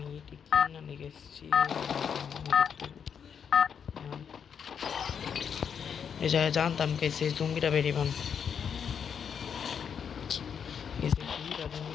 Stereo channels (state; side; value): quieter; right; 7.3 dB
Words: এটি কিনা লিখেছি এই জায়গায় জানতাম কে সেই জঙ্গিটা বেরিয়ে পান